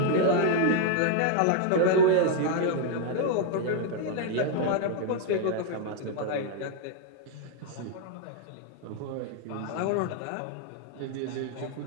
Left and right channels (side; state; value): both; different; correlation 0.00